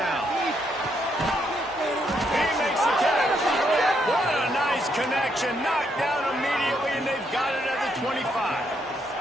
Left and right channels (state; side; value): normal; both; correlation 0.76